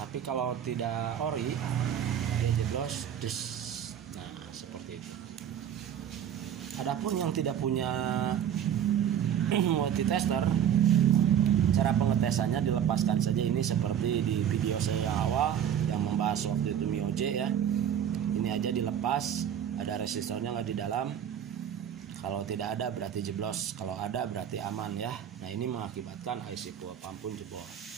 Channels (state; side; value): quieter; left; 9.4 dB